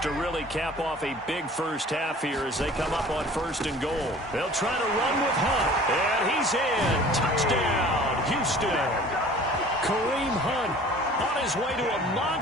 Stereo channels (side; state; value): both; normal; correlation 0.47